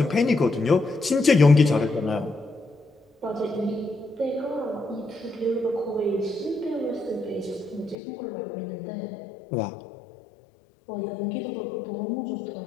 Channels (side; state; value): right; drops out; at 8.0 s